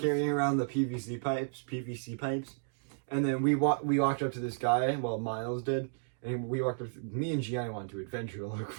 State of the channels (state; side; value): silent; left; digital silence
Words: around the PVC pipes, and then we walked up to this guy. Well, Miles did, and me and Gianni wanted to adventure to look